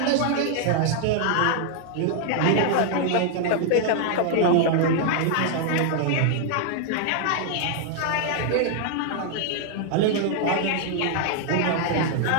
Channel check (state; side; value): different; both; correlation 0.00